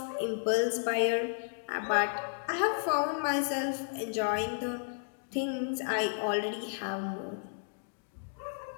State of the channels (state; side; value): silent; right; digital silence